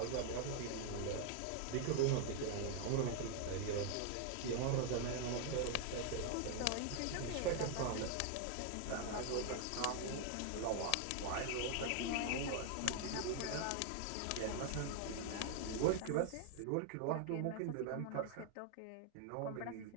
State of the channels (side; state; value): both; different; correlation 0.00